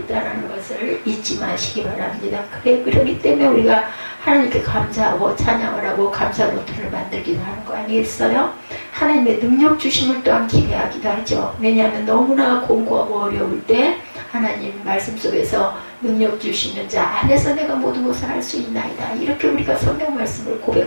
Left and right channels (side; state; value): both; inverted; correlation -1.00